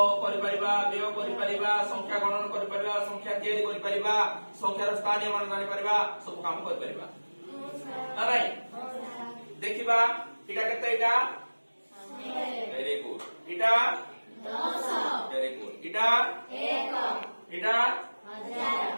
करि परिबा व्यय करि परिबा संख्या गणन करि परिबा संख्या तैयारी करि परिबा संख्यार स्थानीय मान जानि परिबा सब काम करि परिबा नाइ देखिबा इटा केते इटा वेरी गुड इटा 10 वेरी गुड इटा 1 इटा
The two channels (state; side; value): inverted; both; correlation -1.00